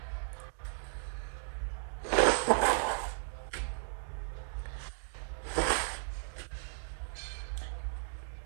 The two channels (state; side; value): silent; left; digital silence